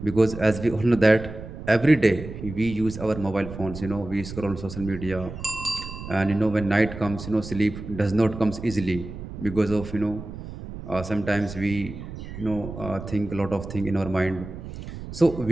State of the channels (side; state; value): right; noise; rumble, 11 dB below the sound